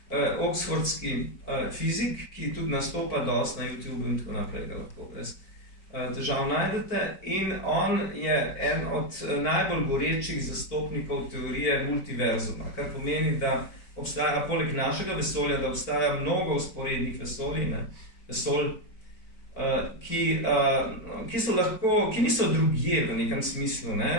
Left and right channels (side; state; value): right; late; 4.4 ms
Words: oxfordski fizik, ki tudi nastopa dosti na YouTube in tako naprej, ga lahko brez težav najdete. In on je en od najbolj gorečih zastopnikov teorije multiverzuma, kar pomeni, da obstaja poleg našega vesolja, da obstaja mnogo vzporednih vesolj, ki niso drugje v nekem smislu.